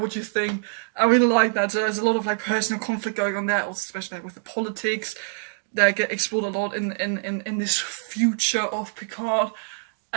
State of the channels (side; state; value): left; silent; digital silence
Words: you think. I really like that. So there's a lot of like personal conflict going on there, also especially with the politics that get explored a lot in this future of Picard.